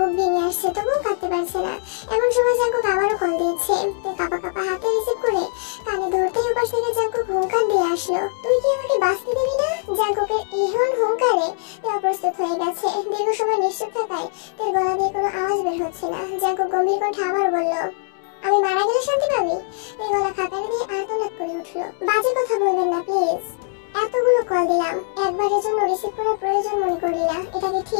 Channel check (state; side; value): silent; right; 61 dB below the other